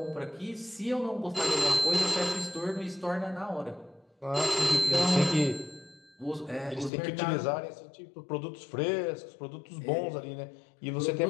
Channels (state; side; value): drops out; right; at 6.9 s